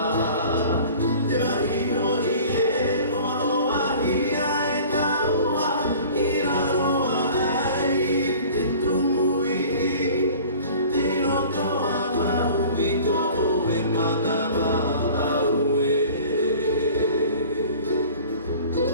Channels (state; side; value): inverted; both; correlation -0.45